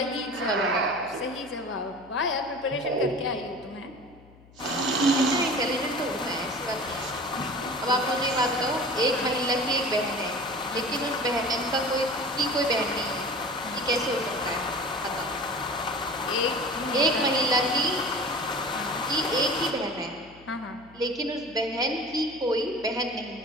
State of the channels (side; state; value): left; noise; hum, 25 dB below the sound